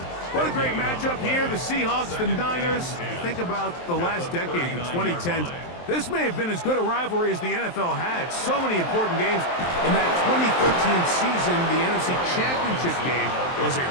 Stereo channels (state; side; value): late; right; 23 ms